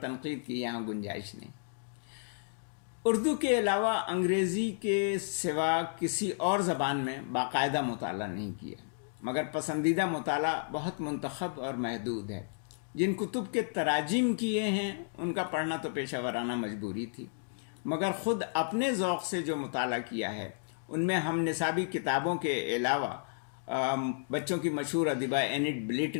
تنقید کی یہاں گنجائش نہیں۔ اردو کے علاوہ انگریزی کے سوا کسی اور زبان میں باقاعدہ مطالعہ نہیں کیا، مگر پسندیدہ مطالعہ بہت منتخب اور محدود ہے۔ جن کتب کے تراجم کیے ہیں ان کا پڑھنا تو پیشہ ورانہ مجبوری تھی، مگر خود اپنے ذوق سے جو مطالعہ کیا ہے ان میں ہم نصابی کتابوں کے علاوہ بچوں کی مشہور ادیبہ اینٹ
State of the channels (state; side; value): silent; right; digital silence